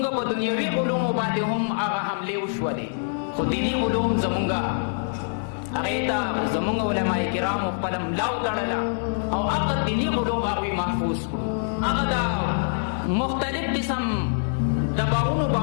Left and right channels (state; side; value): silent; right; digital silence